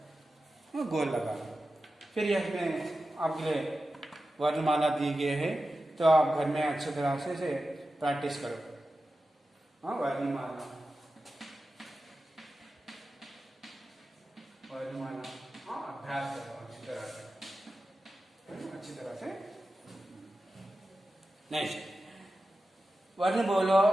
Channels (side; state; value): both; normal; correlation 0.93